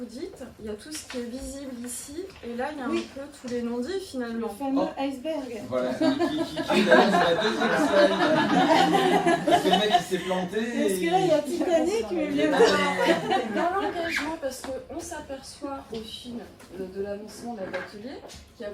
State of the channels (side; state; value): both; identical; correlation 1.00